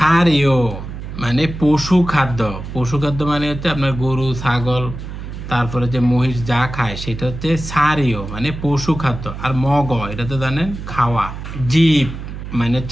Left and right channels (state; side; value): noise; right; hum, 9 dB below the sound